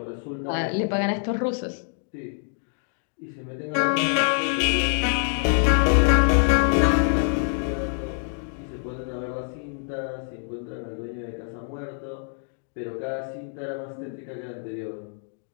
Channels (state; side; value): silent; right; 59 dB below the other